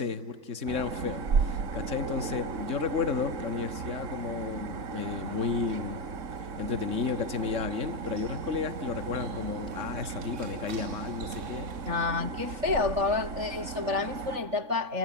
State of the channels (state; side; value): late; left; 3.6 ms